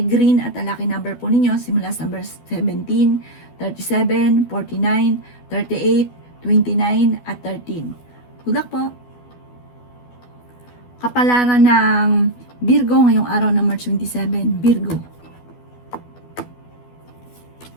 green at ang lucky number po ninyo simula sa number 17, 37, 49, 38, 29 at 13. Good luck po! Kapalaran ng Virgo ngayong araw ng March 27, Virgo.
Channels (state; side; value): late; right; 12 ms